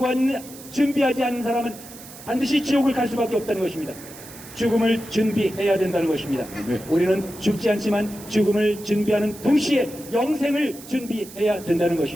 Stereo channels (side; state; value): right; noise; hiss, 17 dB below the sound